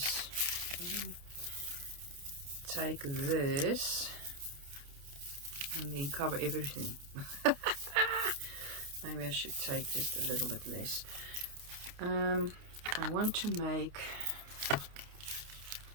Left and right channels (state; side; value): late; left; 29 ms